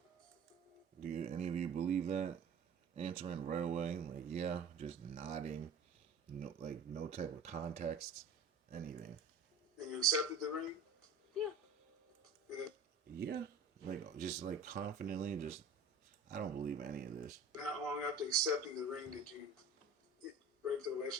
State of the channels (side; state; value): left; quieter; 3.9 dB